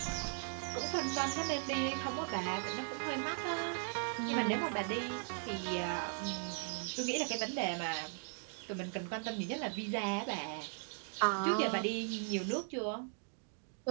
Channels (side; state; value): left; silent; 52 dB below the other